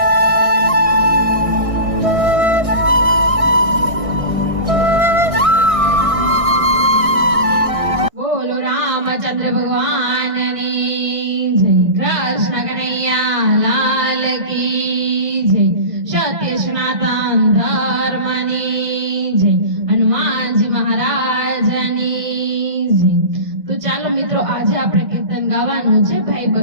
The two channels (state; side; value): late; left; 1.6 ms